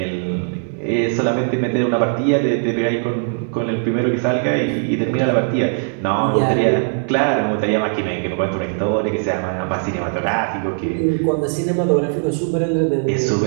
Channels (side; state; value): left; silent; 66 dB below the other